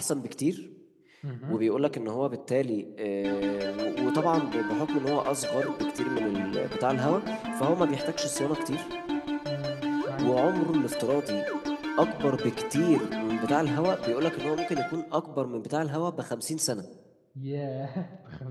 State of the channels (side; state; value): both; identical; correlation 1.00